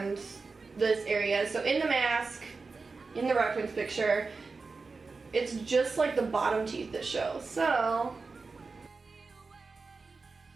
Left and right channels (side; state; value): left; quieter; 4.2 dB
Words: this area. So in the mask, in the reference picture, it's just like the bottom teeth that show. So